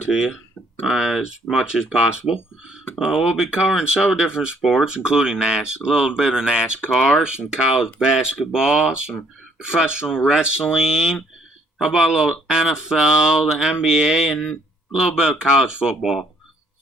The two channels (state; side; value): normal; both; correlation 0.65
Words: you as much as possible. We'll be covering several different sports, including a little bit of NASCAR, some college basketball, some professional wrestling. How about a little NFL, the NBA, and a little bit of college football.